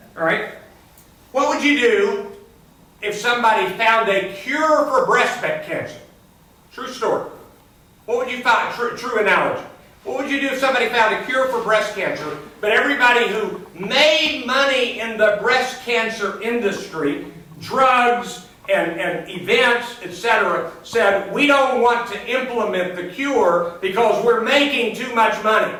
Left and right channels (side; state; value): both; identical; correlation 1.00